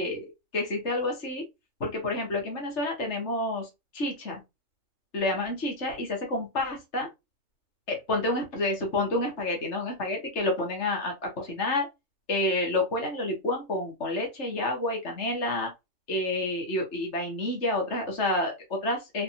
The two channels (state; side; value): late; right; 3.3 ms